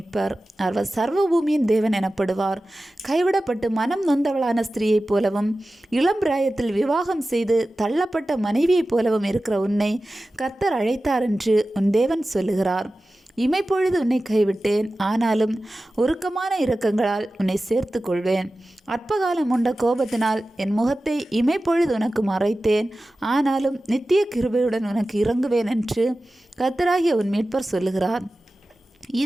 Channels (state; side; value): normal; both; correlation 0.95